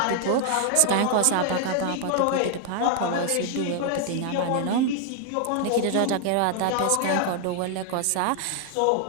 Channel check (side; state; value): both; different; correlation 0.00